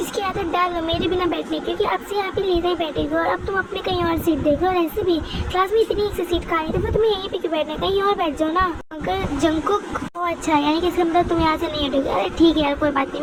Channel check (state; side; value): identical; both; correlation 1.00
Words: की आदत डाल लो मेरे बिना बैठने, क्योंकि अब से यहाँ पे लीजा ही बैठेगी, और अब तुम अपने कहीं और सीट देखो। और ऐसे भी क्लास में इतनी एक से सीट खाली, तो फिर तुम्हें यहीं पे क्यों बैठना है, कहीं और बैठ जाओ ना। अगर जंगकुक अच्छा यानी कि इसका मतलब तुम यहाँ से नहीं हटोगे। अरे ठीक है यार कोई बात नहीं,